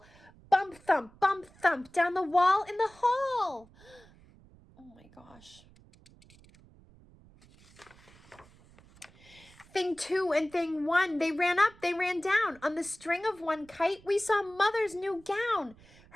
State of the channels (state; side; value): noise; right; rumble, 26 dB below the sound